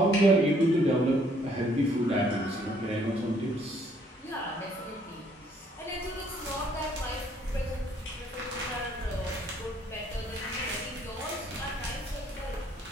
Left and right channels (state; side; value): normal; both; correlation 0.64